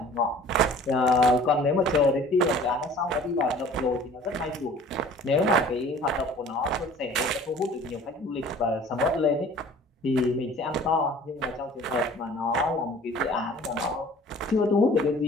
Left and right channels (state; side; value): normal; both; correlation 0.48